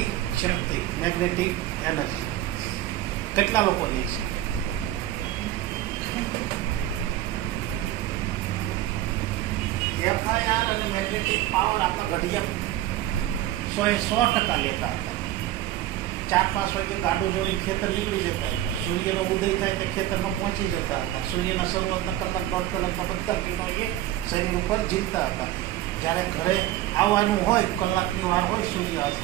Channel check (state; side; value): quieter; left; 14.1 dB